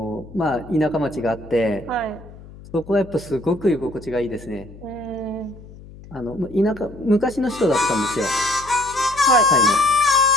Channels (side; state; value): left; noise; hum, 18 dB below the sound